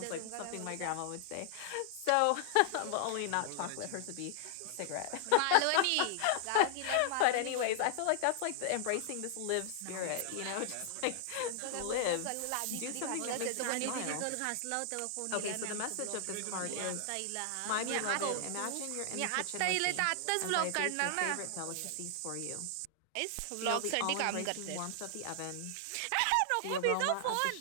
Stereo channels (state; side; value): different; both; correlation -0.01